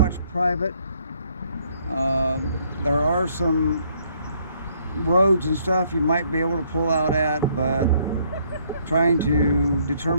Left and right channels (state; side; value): inverted; both; correlation -0.67